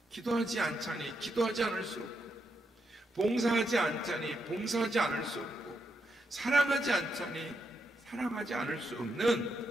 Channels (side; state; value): both; normal; correlation 0.81